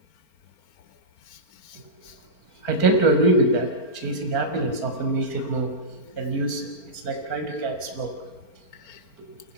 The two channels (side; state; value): right; late; 4.4 ms